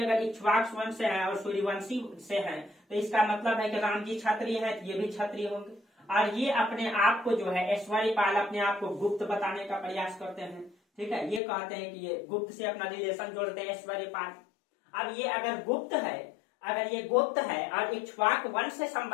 अगर इक्ष्वाक वंश से है और सूर्यवंशी से है तो इसका मतलब है कि राम जी क्षत्रिय है, तो ये भी क्षत्रिय होंगे। और ये अपने आप को जो है ऐश्वर्यपाल अपने आप को गुप्त बताने का प्रयास करते हैं। ठीक है, ये कहते हैं कि ये गुप्त से अपना रिलेशन जोड़ते हैं ऐश्वर्यपाल। अब ये अगर गुप्त है और इक्ष्वाक वंश से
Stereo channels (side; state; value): right; drops out; at 11.4 s